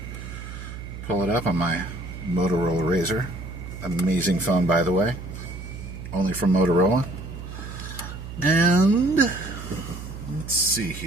Pull it up on my Motorola Razr. Amazing phone, by the way. Only from Motorola. And let's see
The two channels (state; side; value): noise; right; hum, 10 dB below the sound